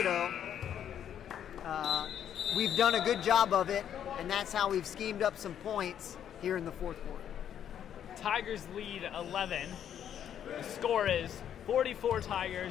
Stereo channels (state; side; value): quieter; right; 9.6 dB